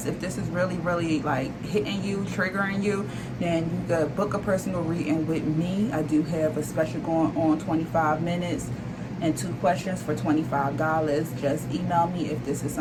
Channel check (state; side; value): identical; both; correlation 1.00